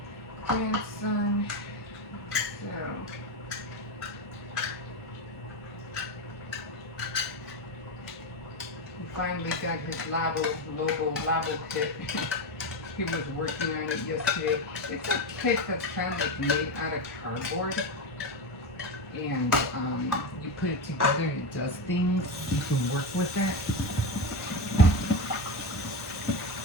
grandson. So he finally got his Lobo Labo kit. He was working on it yesterday. It's a kit that's kind of like made out of cardboard. And you put it together and it does things. You can work with that.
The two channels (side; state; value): both; normal; correlation 0.16